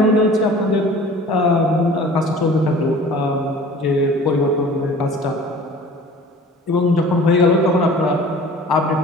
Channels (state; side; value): normal; both; correlation 0.45